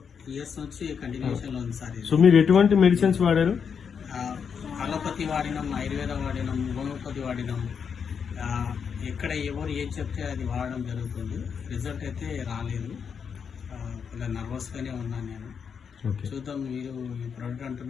years నుంచి కంటిన్యూషన్ లో ఉంది సార్. సో మీరు ఎటువంటి మెడిసిన్స్ వాడారు? అలోపతి వాడినాం, ఆయుర్వేద వాడినాం, హోమియోపతి వాడినాం. ఎక్కడ ఎవరు ఏం చెప్తే అది వాడడం జరుగుతుంది. రిజల్ట్ అయితే రాలేదు. కొంచెం నర్వస్ గానే ఉన్నాను నేను. చూద్దాం, మీరు ఈ ప్రోడక్ట్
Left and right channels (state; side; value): quieter; right; 6.7 dB